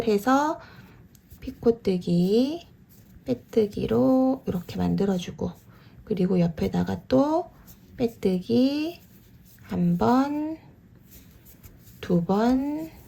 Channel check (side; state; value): both; identical; correlation 1.00